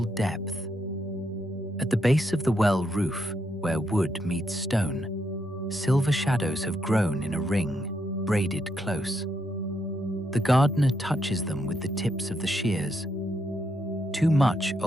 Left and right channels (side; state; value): both; normal; correlation 0.79